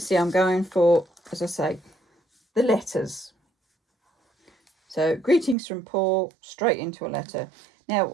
I'm going for, as I say, the letters. So, greetings from Paul, straight into a letter. Now,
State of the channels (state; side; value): drops out; left; at 5.6 s